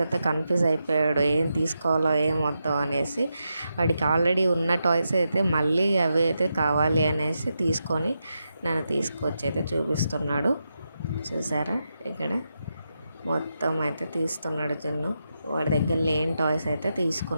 అయితే కన్ఫ్యూజ్ అయిపోయాడు, ఏం తీసుకోవాలో ఏం వద్దో అనేసి. వాడికి ఆల్రెడీ ఉన్న టాయ్స్ అయితే మళ్ళీ అవి అయితే కావాలి అనేసి తీసుకొని నన్ను తీసుకొచ్చి అయితే చూపిస్తున్నాడు. చూసారా, ఇక్కడ మొత్తం అయితే తీస్తున్నాడు జున్ను. వాడి దగ్గర లేని టాయ్స్ అయితే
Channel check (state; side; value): inverted; both; correlation -0.86